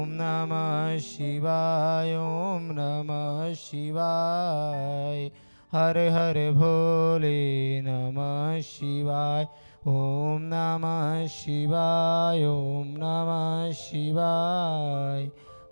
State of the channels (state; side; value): inverted; both; correlation -1.00